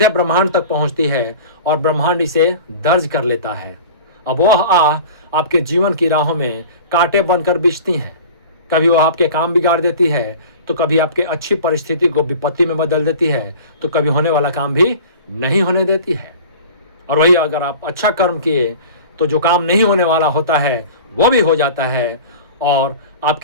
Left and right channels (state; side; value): inverted; both; correlation -0.39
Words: ब्रह्मांड तक पहुंचती है और ब्रह्मांड इसे दर्ज कर लेता है। अब वह आह आपके जीवन की राहों में कांटे बनकर बिछती हैं। कभी वह आपके काम बिगाड़ देती है, तो कभी आपके अच्छी परिस्थिति को विपत्ति में बदल देती है, तो कभी होने वाला काम भी नहीं होने देती है। और वही अगर आप अच्छा कर्म किए तो जो काम नहीं होने वाला होता है वो भी हो जाता है और